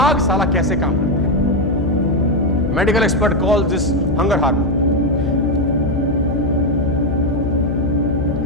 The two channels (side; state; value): left; noise; hum, 4 dB below the sound